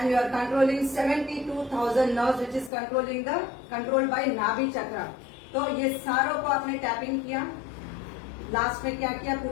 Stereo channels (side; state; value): right; drops out; at 2.7 s